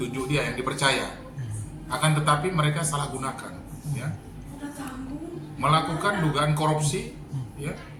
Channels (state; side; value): identical; both; correlation 1.00